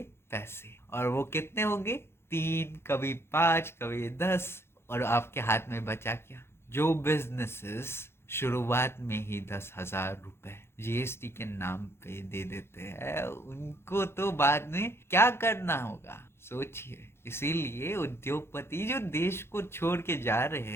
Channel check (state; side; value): late; right; 0.12 ms